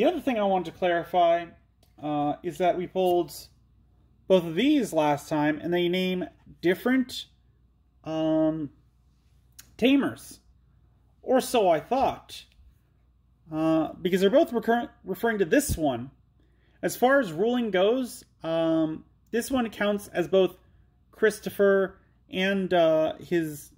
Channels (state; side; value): identical; both; correlation 1.00